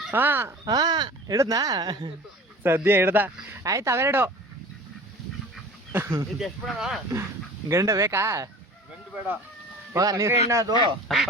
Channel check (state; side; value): normal; both; correlation 0.41